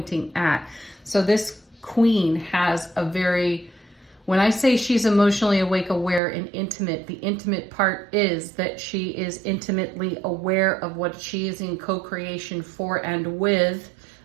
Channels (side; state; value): left; drops out; at 6.2 s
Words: at. So this queen has a very, when I say she's emotionally awake, aware, and intimate, the intimate part is that she is intimately aware of what she is in co-creation for and with